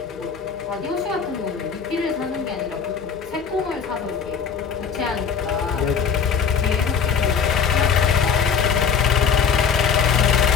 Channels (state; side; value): quieter; right; 6.5 dB